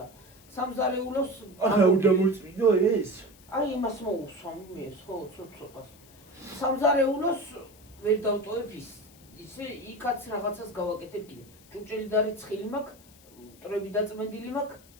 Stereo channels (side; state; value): left; noise; hiss, 25 dB below the sound